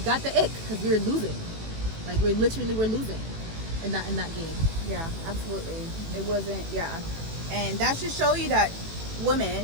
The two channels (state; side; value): late; left; 18 ms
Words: ick, because we were losing. Like we're losing in that game. Yeah, absolutely. It wasn't. Yeah, and that should show you that